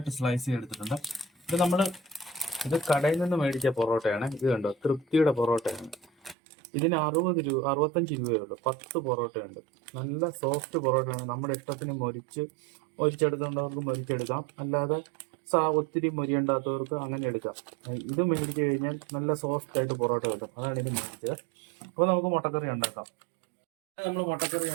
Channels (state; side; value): drops out; left; at 6.4 s